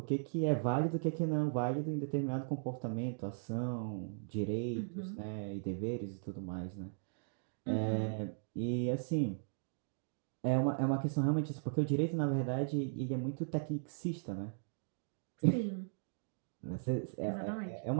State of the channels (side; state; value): left; silent; digital silence